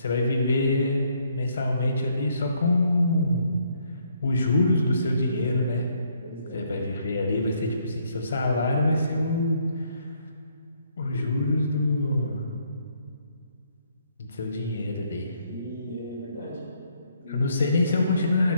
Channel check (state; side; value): inverted; both; correlation -0.70